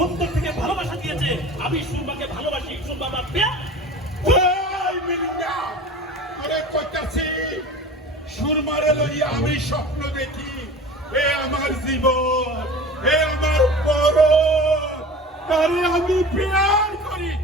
অন্তর থেকে ভালোবাসা দিয়েছে। আমি সুরমাকে ভালোবাসি। সুরমা আমার প্রিয়া। এই মিলিন্ডা, আরে কইতাছি সুরমারে লইয়া আমি স্বপ্ন দেখি। এ আমার জীবন, এ আমার বড়, তারে আমি প্যার করি।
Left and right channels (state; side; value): normal; both; correlation 0.38